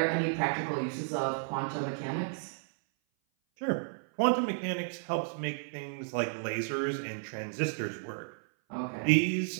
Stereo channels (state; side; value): silent; left; 56 dB below the other